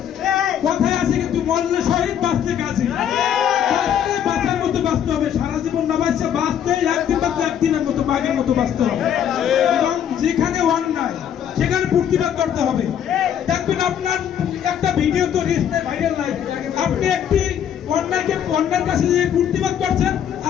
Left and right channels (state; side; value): quieter; right; 9.3 dB